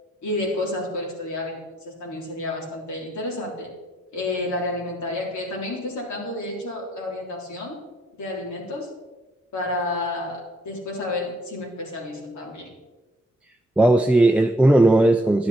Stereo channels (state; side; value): normal; both; correlation 0.72